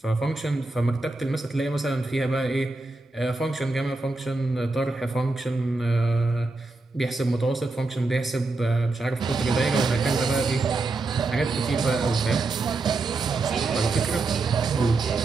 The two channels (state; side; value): quieter; left; 3.3 dB